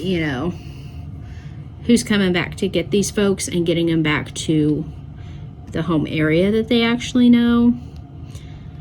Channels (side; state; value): both; identical; correlation 1.00